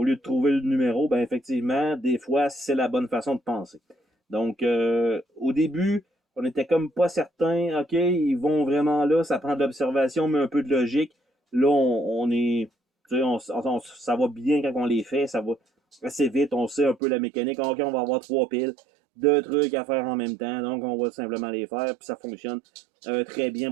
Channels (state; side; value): drops out; left; at 17.0 s